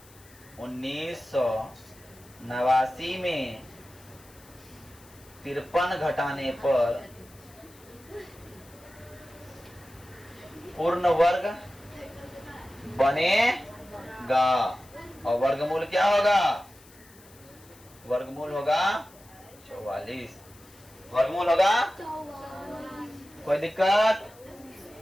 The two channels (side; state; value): left; noise; hiss, 24 dB below the sound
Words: 1989 में 53 घटाने पर पूर्ण वर्ग बनेगा और वर्गमूल क्या होगा? वर्गमूल होगा 44। वर्गमूल होगा 44। कोई दिक्कत?